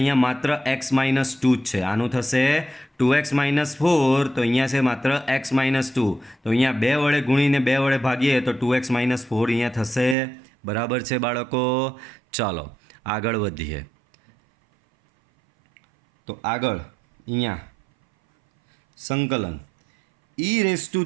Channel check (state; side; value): drops out; left; at 10.2 s